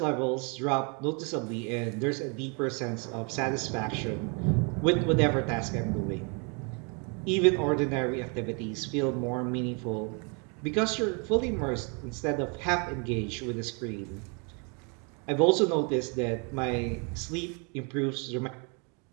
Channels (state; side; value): quieter; left; 35.2 dB